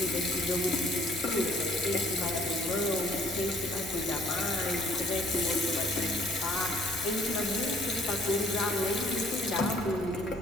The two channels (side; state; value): both; normal; correlation 0.59